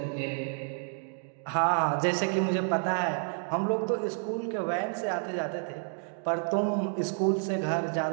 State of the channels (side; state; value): left; silent; 58 dB below the other